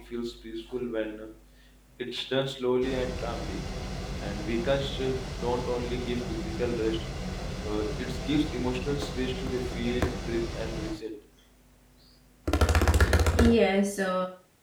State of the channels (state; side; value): identical; both; correlation 1.00